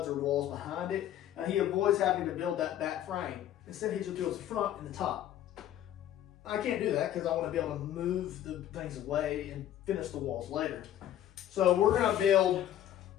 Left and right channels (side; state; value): right; quieter; 11.7 dB